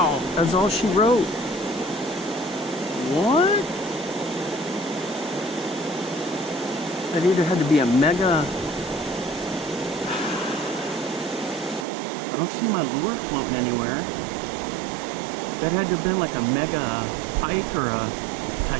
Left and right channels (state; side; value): drops out; left; at 11.9 s